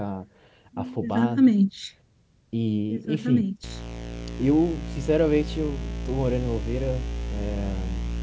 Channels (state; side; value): identical; both; correlation 1.00